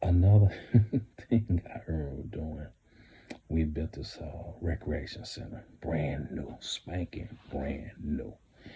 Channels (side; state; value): both; identical; correlation 1.00